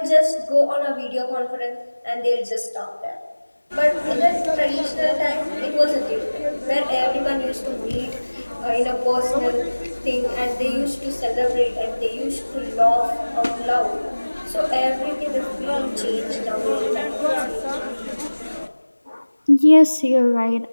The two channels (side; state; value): both; inverted; correlation -1.00